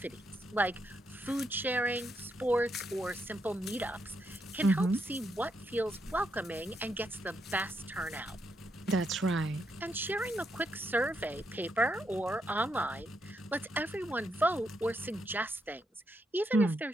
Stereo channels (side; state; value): both; normal; correlation 0.79